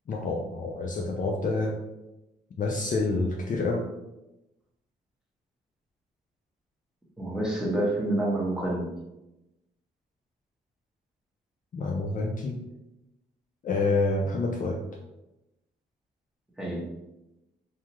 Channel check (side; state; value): both; normal; correlation 0.63